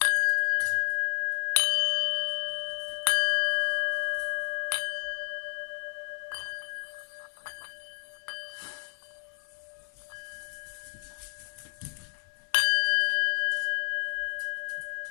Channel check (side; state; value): right; silent; digital silence